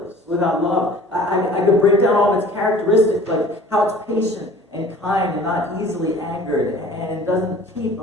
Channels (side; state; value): both; normal; correlation 0.47